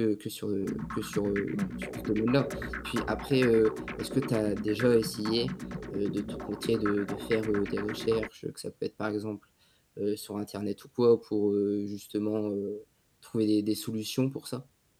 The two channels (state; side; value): identical; both; correlation 1.00